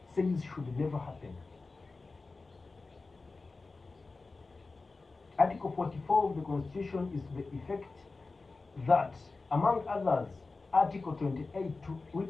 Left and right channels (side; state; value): right; quieter; 3.7 dB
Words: says should never happen. Article 44 of the Constitution is to the effect that, among others, Article 28,